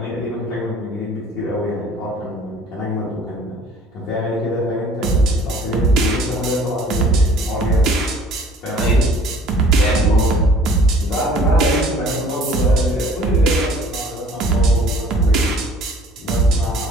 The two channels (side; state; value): both; normal; correlation 0.52